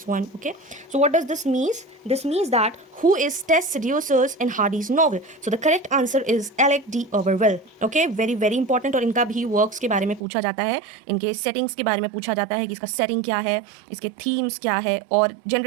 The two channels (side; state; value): left; drops out; at 10.2 s